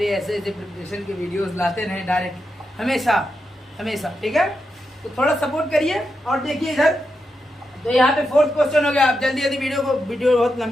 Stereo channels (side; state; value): both; normal; correlation 0.86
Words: ऐसे ऐसे प्रिपरेशन के वीडियोस लाते रहें डायरेक्ट हमेशा हमेशा, ठीक है। तो थोड़ा सपोर्ट करिए। और देखिए इधर, तो यहाँ पे 4th क्वेश्चन हो गया। आप जल्दी जल्दी वीडियो बहुत